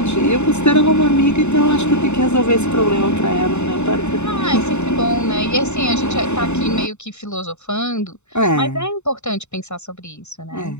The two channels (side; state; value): right; late; 0.82 ms